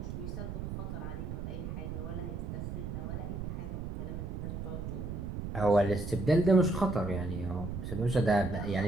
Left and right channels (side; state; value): right; noise; rumble, 5 dB below the sound